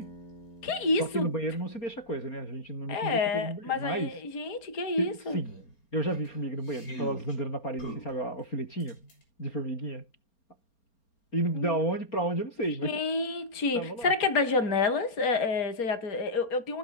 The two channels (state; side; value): late; right; 4.3 ms